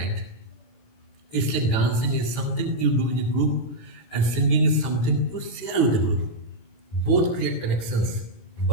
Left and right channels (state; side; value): late; right; 17 ms